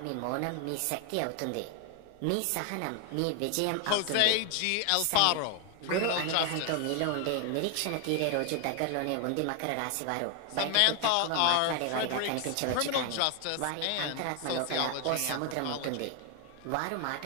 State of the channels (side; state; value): both; different; correlation 0.00